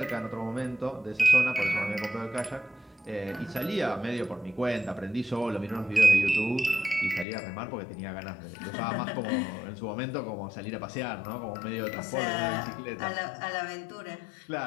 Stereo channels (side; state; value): right; drops out; at 7.2 s